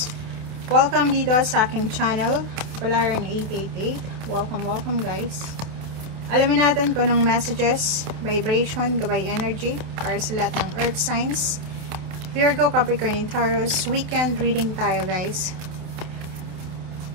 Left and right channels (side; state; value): left; late; 28 ms